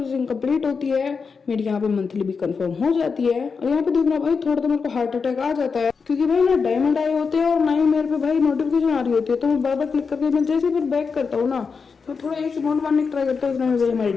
कंप्लीट होती है मेरी यहाँ पे मंथली भी कंफर्म हो जाती है। और यहाँ पे देखना भाई थोड़ा तो मेरे को हार्ट अटैक आ जाता है, क्योंकि भाई ना डायमंड आए होते हैं और ना ही मेरे पे भाई नोटिफिकेशन आ रही होती है। तो मैं बार बार क्लिक करके मैं जैसे फिर बैक करता हूँ ना तो थोड़ा एक अमाउंट मारने की ट्राई करता हूँ, उसमें भाई हमारे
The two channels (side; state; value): right; quieter; 5.3 dB